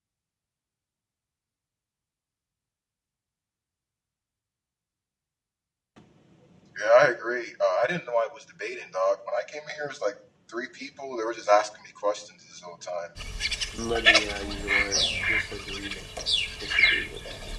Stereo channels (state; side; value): identical; both; correlation 1.00